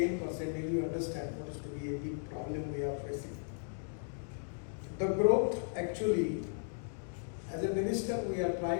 you understand what is to be a big problem we are facing. The growth actually, as a minister, we are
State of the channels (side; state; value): right; silent; digital silence